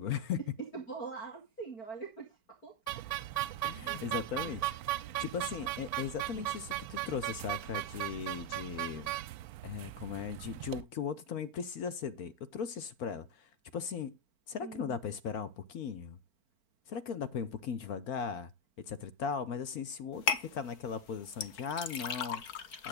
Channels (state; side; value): late; right; 4.4 ms